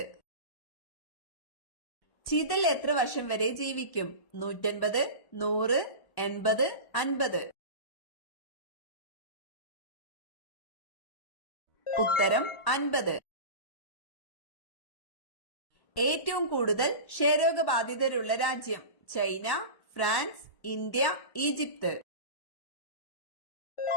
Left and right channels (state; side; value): late; right; 1.1 ms